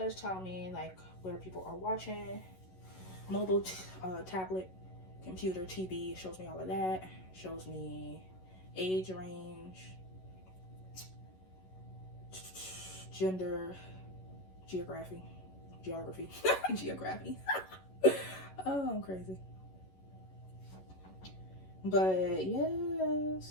tell me like where people are watching. Mobile, tablet, computer, TV. It shows me all of that. Shows me age range, gender, geography. Geography. Oh, I'm crazy. But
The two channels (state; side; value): late; right; 11 ms